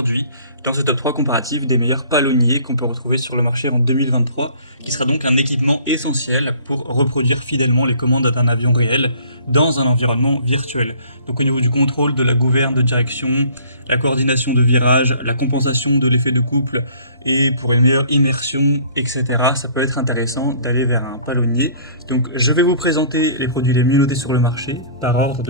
dans ce top 3 comparatif des meilleurs palonniers qu'on peut retrouver sur le marché en 2023, qui sera donc un équipement essentiel pour reproduire fidèlement les commandes d'un avion réel dans un environnement virtuel. Donc au niveau du contrôle, de la gouverne de direction, la coordination de virage, la compensation de l'effet de couple et pour une meilleure immersion, etc. Ça peut être intéressant d'aller vers un palonnier. Donc je vais vous présenter les produits les mieux notés sur le marché par ordre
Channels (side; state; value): both; inverted; correlation -0.53